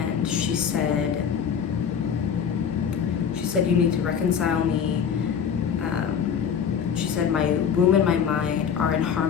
she said, you need to reconcile me. She said, my womb and my mind are in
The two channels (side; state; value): right; quieter; 7.5 dB